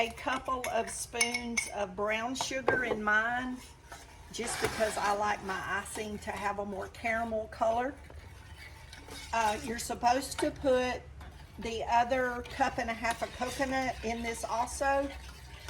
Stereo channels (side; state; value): both; identical; correlation 1.00